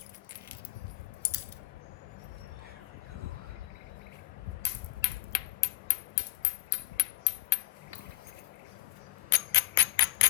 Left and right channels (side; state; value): right; quieter; 16.4 dB